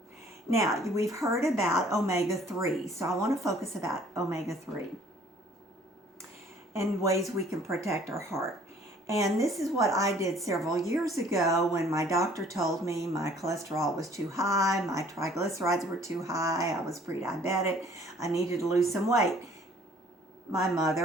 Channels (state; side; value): normal; both; correlation 0.56